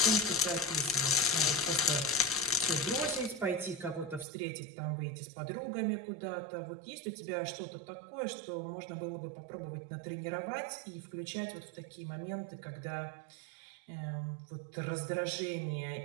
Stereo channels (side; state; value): left; drops out; at 4.2 s